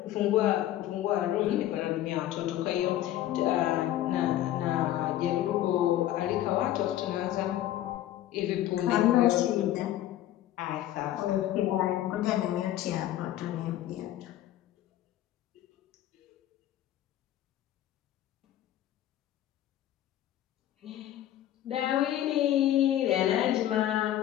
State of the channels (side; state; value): right; quieter; 13.0 dB